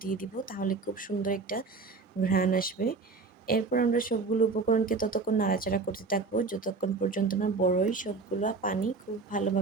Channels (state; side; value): quieter; left; 4.2 dB